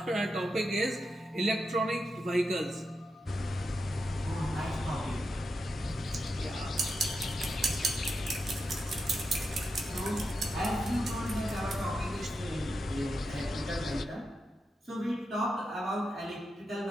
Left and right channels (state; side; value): normal; both; correlation 0.87